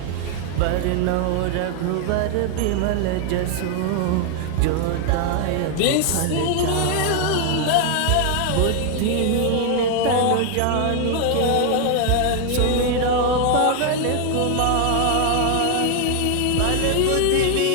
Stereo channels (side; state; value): both; different; correlation 0.00